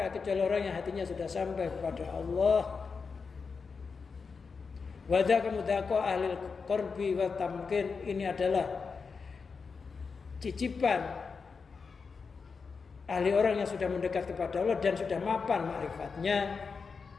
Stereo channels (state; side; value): quieter; right; 5.1 dB